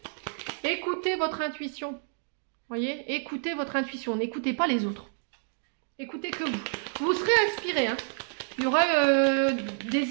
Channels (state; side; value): silent; left; digital silence